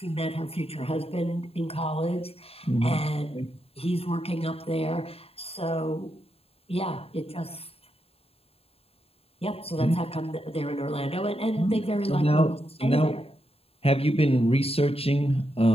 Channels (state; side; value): late; right; 0.28 ms